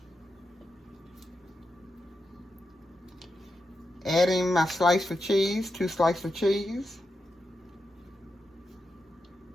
Adding my slice of cheese, 2 slices of cheese.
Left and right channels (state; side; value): normal; both; correlation 0.87